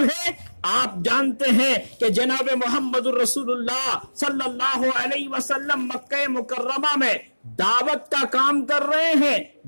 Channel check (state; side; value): inverted; both; correlation -1.00